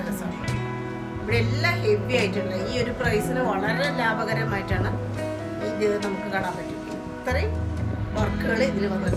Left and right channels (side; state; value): both; identical; correlation 1.00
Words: രസമാണ്. ഇവിടെ എല്ലാം ഹെവി ആയിട്ടുള്ള ഈ ഒരു പ്രൈസിന് വളരെ ലാഭകരമായിട്ടാണ് ഇത് നമുക്ക് കാണാൻ പറ്റും. ഇത്രയും വർക്കുകൾ ഇതിൽ